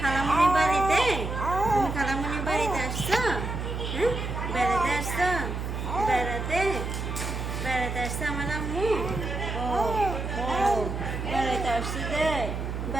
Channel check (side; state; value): right; noise; hum, 4 dB below the sound